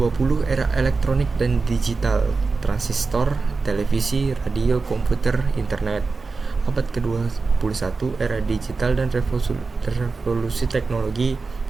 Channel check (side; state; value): left; quieter; 4.2 dB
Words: era elektronik dan digital, transistor, televisi, radio, komputer, internet. Abad ke-21 era digital dan revolusi teknologi